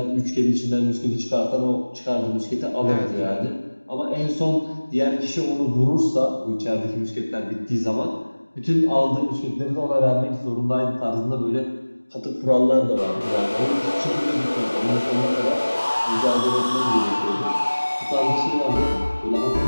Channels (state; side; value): inverted; both; correlation -1.00